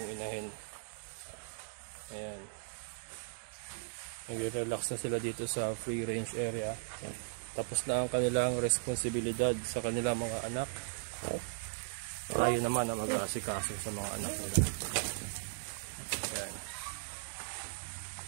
inahin. Ayan. Nag-relax na sila dito sa free range area. Tapos na ang kanilang responsibilidad sa kanilang mga anak. Tayo naman ang mag-aasikaso sa mga anak nila. Ayan.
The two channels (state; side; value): silent; left; digital silence